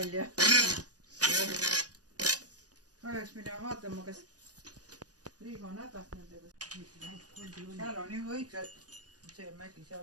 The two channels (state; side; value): late; left; 0.68 ms